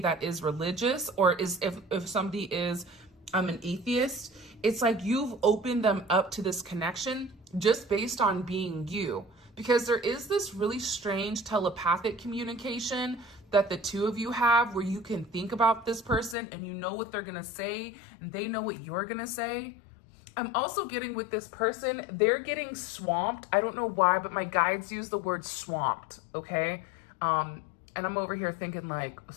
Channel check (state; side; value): drops out; right; at 16.4 s